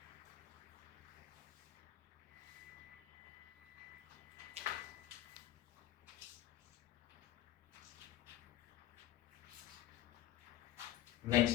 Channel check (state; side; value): quieter; right; 13.1 dB